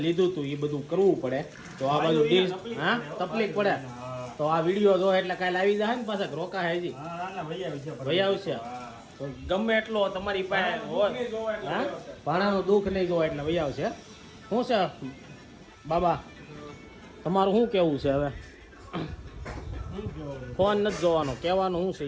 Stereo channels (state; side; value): identical; both; correlation 1.00